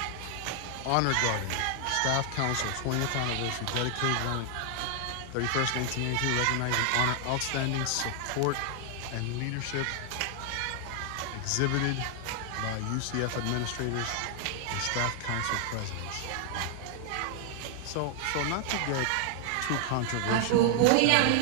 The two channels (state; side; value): different; both; correlation 0.00